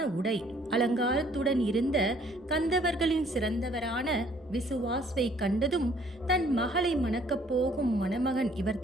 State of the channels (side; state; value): both; normal; correlation 0.60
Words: உடை அலங்காரத்துடன் இருந்த கந்தவர்களின் சிறந்தவரான விசுவாஸ்வை கண்டதும் தன் மகளை மணக்கப் போகும் மணமகன்